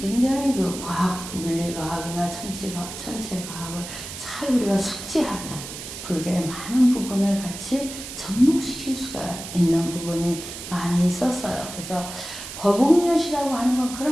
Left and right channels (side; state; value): right; noise; hiss, 10 dB below the sound